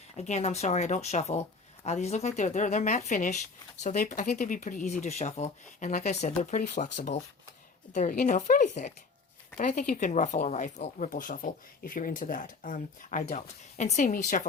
Again, I'm sorry, I don't shuffle. These look like they're matte finish, so I think they'd be pretty easy to shuffle. And like I said, they're pretty flexible. They're, you know, fairly thick. But I think you can ruffle or ripple shuffle if you're into that. I don't. And seeing me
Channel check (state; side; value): quieter; right; 4.4 dB